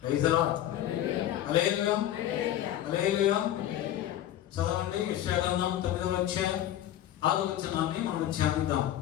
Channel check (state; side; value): quieter; right; 12.3 dB